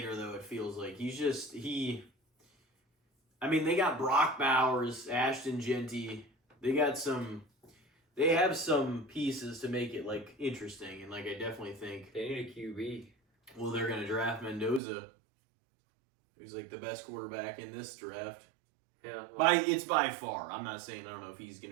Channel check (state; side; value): drops out; left; at 14.8 s